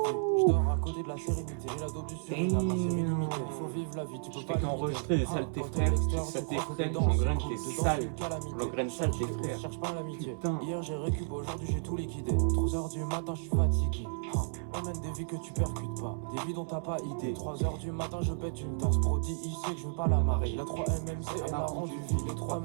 Je dors à côté de la sérénité. J'ai la dope du Suriname, ma série limitée. Il faut vivre la vie, tu peux Je pas fais qu'enregistrer des saletés frères. Saletés frères, j'engraine tes sales. J'engraine sales tes frères. Cherche pas l'amitié. Putain. Hier j'ai récup, aujourd'hui j'ai tout liquidé. 3h du matin, je suis fatigué. On mène des vies que tu percutes pas, des vies dont t'as pas idée. 3h du matin, je pète une tasse. Prodi, il sait que je veux pas la marrer. La 3MMC, elle a rendu vide. Les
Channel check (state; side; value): silent; left; 56 dB below the other